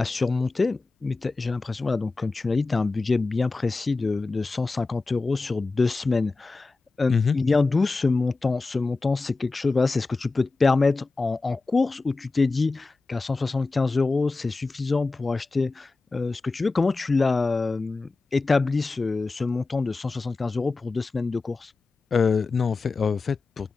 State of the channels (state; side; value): quieter; right; 3.7 dB